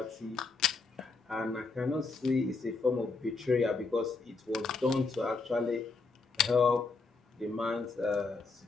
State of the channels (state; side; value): quieter; right; 4.1 dB